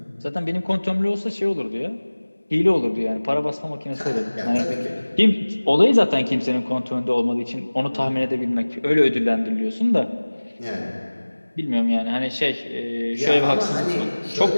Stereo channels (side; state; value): both; inverted; correlation -1.00